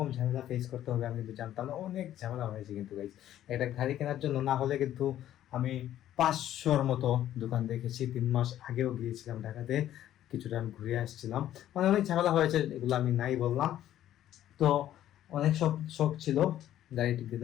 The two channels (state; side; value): quieter; right; 12.1 dB